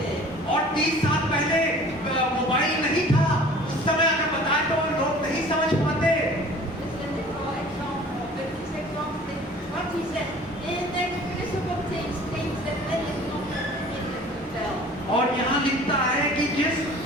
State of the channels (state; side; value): normal; both; correlation 0.47